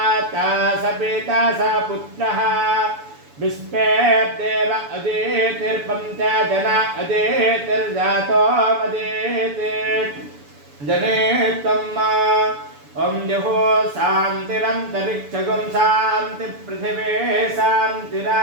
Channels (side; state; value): left; late; 7.0 ms